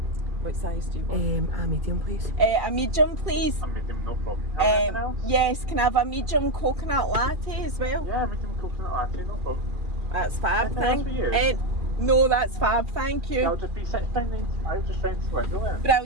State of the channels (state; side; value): late; left; 2.4 ms